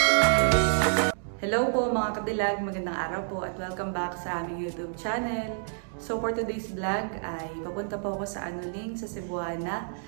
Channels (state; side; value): silent; left; digital silence